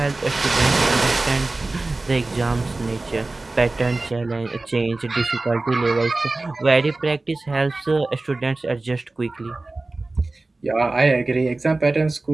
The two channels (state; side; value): quieter; left; 3.2 dB